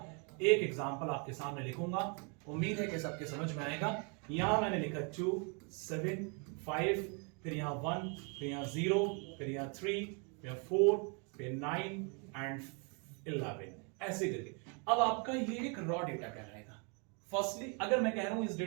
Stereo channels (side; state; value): left; quieter; 36.0 dB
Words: एक एग्जाम्पल आपके सामने लिखूंगा, उम्मीद है कि सबके समझ में आएगा। यहां मैंने लिखा 2, 7, 5, फिर यहां 1, फिर यहां 0, फिर यहां 3, फिर 4, फिर 9 एंड 11, ऐसे करके। अब आपका ये एक रॉ डेटा कहलाएगा। फर्स्टली अगर मैं कह रहा हूं इस